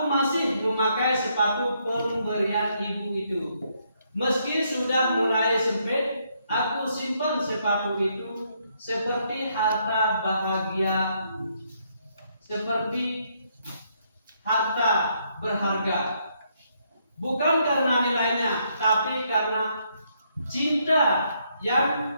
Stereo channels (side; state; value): both; inverted; correlation -0.74